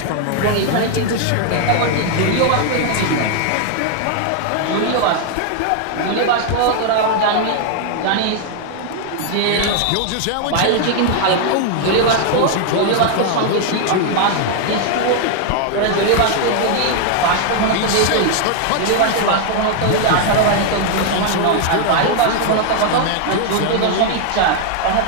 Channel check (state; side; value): different; both; correlation 0.00